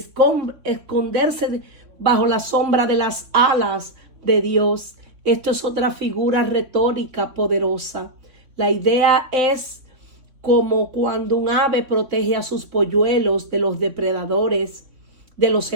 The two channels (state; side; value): late; left; 3.5 ms